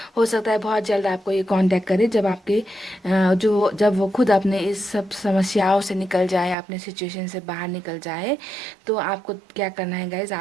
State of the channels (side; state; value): left; drops out; at 6.6 s